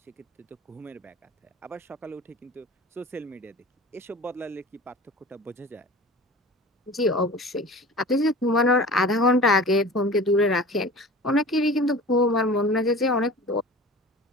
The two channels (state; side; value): normal; both; correlation 0.39